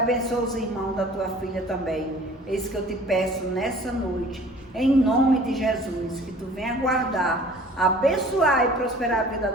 os irmãos da Tua filha também. É isso que eu te peço nessa noite. Em nome de Jesus. Que Tu venha guardar, abençoar e prosperar a vida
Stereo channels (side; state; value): both; normal; correlation 0.49